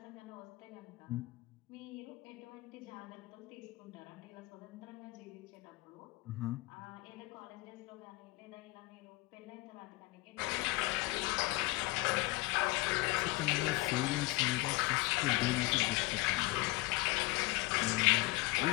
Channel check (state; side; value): quieter; right; 22.3 dB